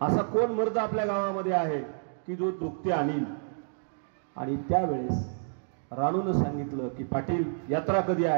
असा कोण मर्द आपल्या गावामध्ये आहे की जो जोगती आणील. आणि त्यावेळेस राणूनं सांगितलं की पाटील यात्रा कधी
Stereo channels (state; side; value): silent; left; digital silence